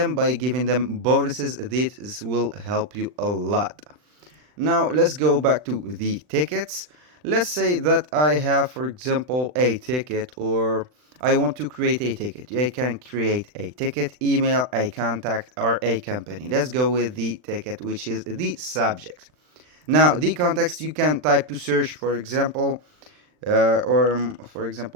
by giving them bonuses. This will help you a lot. Now let's go back to the tickets. Let's say that I have, for example, a ticket, or I want to create a ticket. I can create a ticket, email, a contact, or a company. Let's go with the ticket, which is the subject. Now the context, you can type to search, for example, or for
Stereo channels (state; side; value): late; left; 39 ms